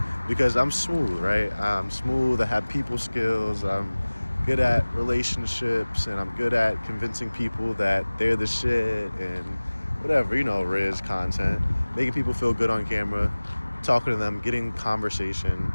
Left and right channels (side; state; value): both; inverted; correlation -1.00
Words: because I'm smooth, right? I'm smooth. I have people skills. I'm good at relationships, and I'm good at convincing people that they're the shit and whatever, Riz content, making people feel good on camera, talking to them, getting conversation,